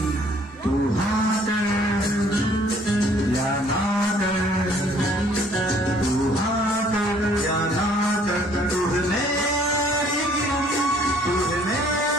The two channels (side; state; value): both; normal; correlation 0.59